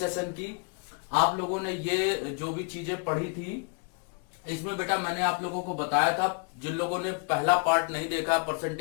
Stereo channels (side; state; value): right; quieter; 38.3 dB